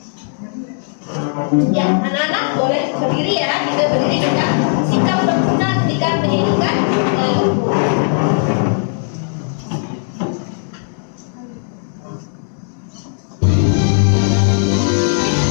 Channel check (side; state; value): right; silent; digital silence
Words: Ya, anak-anak boleh berdiri ya. Kita berdiri dengan sikap berguna ketika menyanyikan lagu.